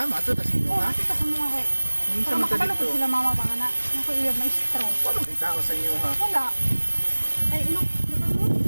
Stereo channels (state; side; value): inverted; both; correlation -1.00